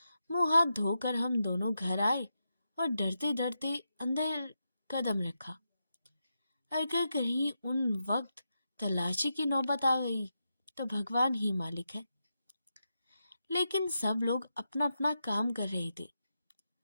मुंह हाथ धोकर हम दोनों घर आए और डरते डरते अंदर कदम रखा। अगर कहीं उन वक्त तलाशी की नौबत आ गई तो भगवान ही मालिक है। लेकिन सब लोग अपना अपना काम कर रहे थे।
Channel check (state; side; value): inverted; both; correlation -0.87